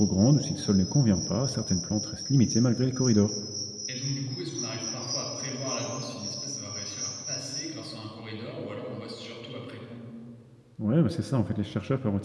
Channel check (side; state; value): both; identical; correlation 1.00